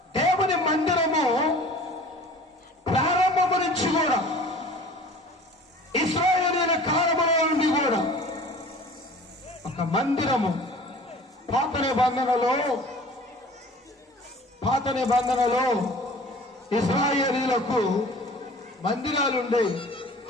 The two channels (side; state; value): both; normal; correlation 0.45